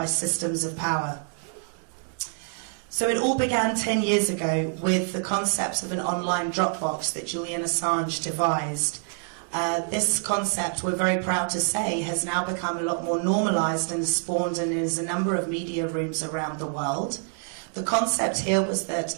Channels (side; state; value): left; silent; 55 dB below the other